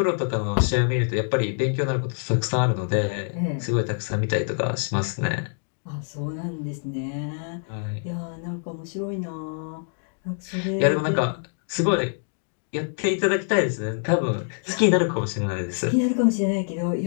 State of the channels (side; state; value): right; silent; digital silence